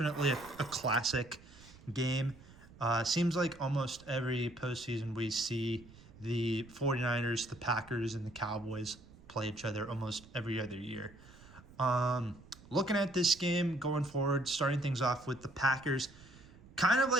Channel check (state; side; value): noise; right; rumble, 22 dB below the sound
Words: a classic game. Seems like almost every postseason we see the 49ers, the Packers, and the Cowboys play each other almost every other year. Looking at this game going forward, starting things off with the Packers, kind of